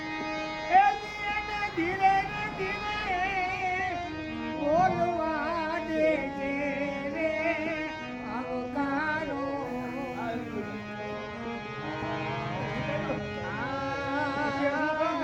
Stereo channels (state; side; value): identical; both; correlation 1.00